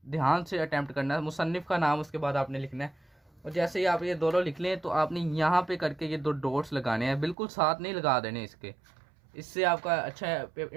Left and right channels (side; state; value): left; drops out; at 7.4 s